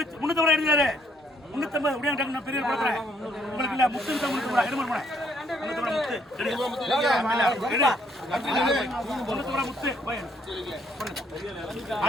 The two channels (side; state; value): both; normal; correlation 0.69